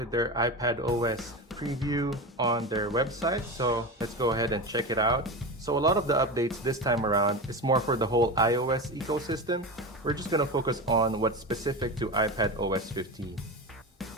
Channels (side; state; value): both; normal; correlation 0.23